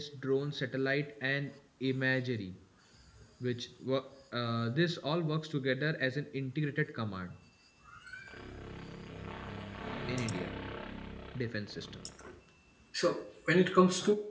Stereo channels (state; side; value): identical; both; correlation 1.00